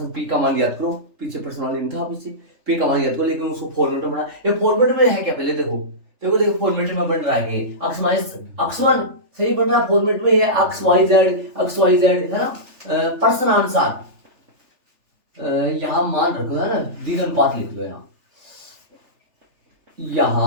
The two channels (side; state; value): left; late; 3.4 ms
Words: पी का मान ज्ञात करो, पीछे प्रश्न वाले था पीछे, पी का मान ज्ञात करो, लेकिन उसको फॉर्मेट में बना, ये फॉर्मेट में है क्या, पहले देखो देखो देखो फॉर्मेट में बन रहा है, अक्ष माइनस अक्ष वन सही बन रहा फॉर्मेट में, ये अक्ष वाई जेड है ना, प्रश्नानुसार यहां मान रखो है ना, द्विघानुपात लिख लो यहां,